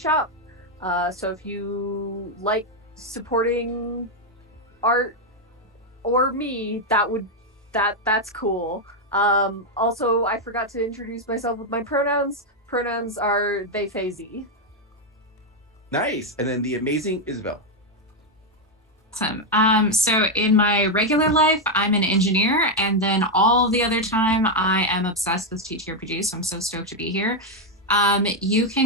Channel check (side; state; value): both; normal; correlation 0.02